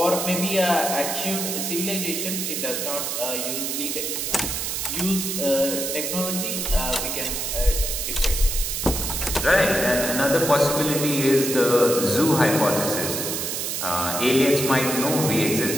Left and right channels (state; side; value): noise; right; hiss, 2 dB below the sound